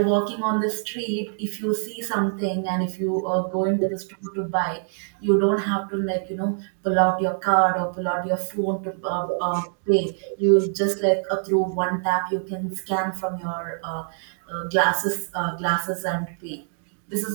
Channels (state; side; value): silent; left; digital silence